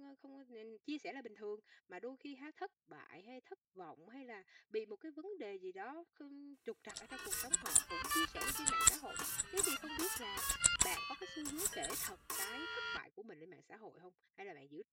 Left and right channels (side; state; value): both; identical; correlation 1.00